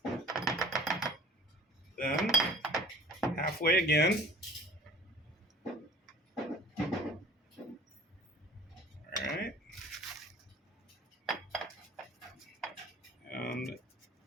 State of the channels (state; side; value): normal; both; correlation 0.45